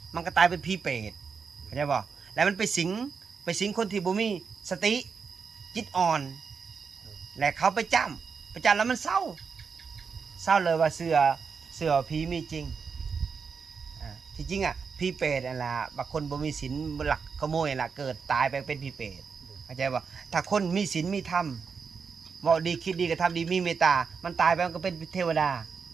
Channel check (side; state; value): left; quieter; 5.7 dB